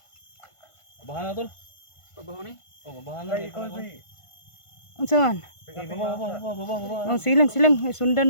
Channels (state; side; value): late; right; 1.5 ms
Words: Babahan na tol. Pabaho ni. Oh, babahan na. Ay, ikaw, Edwin. Unsaon? Sige, baba. Oh, silang.